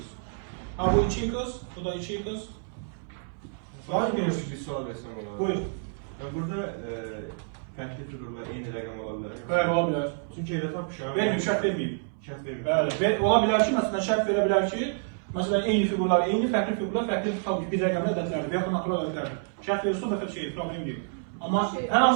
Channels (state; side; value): silent; left; 59 dB below the other